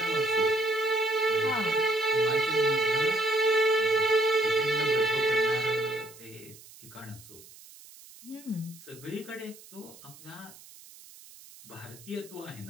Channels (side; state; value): right; noise; hiss, 21 dB below the sound